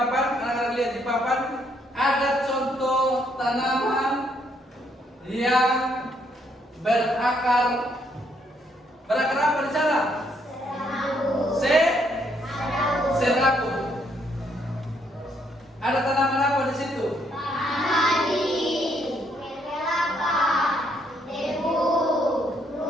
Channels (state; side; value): normal; both; correlation 0.71